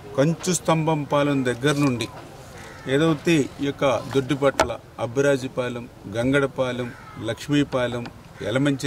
కంచు స్తంభం పాలెం దగ్గర నుండి ఏదైతే ఈ యొక్క దొడ్డిపట్ల, అబ్బిరాజుపాలెం, గంగడపాలెం, లక్ష్మీపాలెం,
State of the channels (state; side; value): identical; both; correlation 1.00